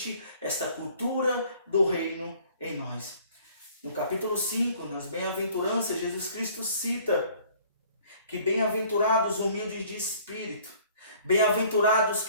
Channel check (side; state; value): both; inverted; correlation -0.55